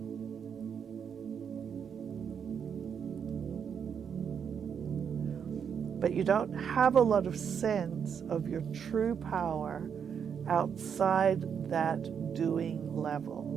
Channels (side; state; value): left; quieter; 7.4 dB